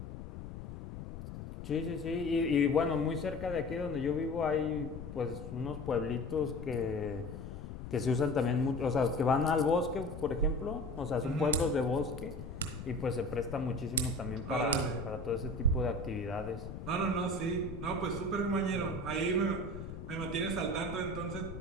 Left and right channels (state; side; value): noise; left; rumble, 9 dB below the sound